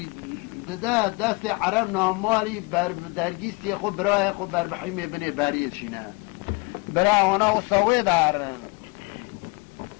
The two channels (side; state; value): right; quieter; 27.9 dB